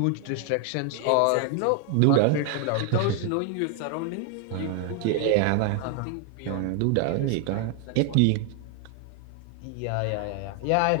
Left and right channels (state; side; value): different; both; correlation 0.01